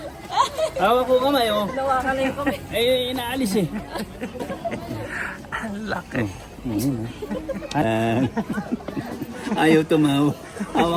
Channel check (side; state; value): both; identical; correlation 1.00